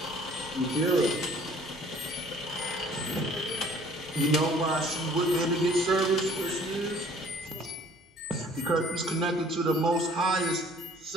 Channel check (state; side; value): normal; both; correlation 0.55